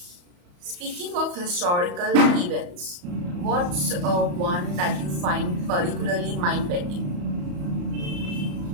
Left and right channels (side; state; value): left; late; 34 ms